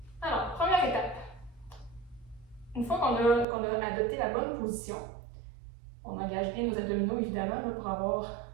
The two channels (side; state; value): left; drops out; at 3.5 s